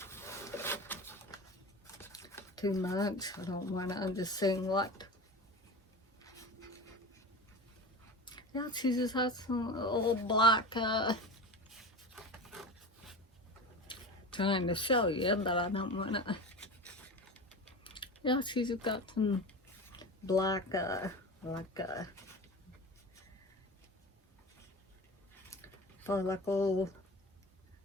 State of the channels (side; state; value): both; normal; correlation 0.30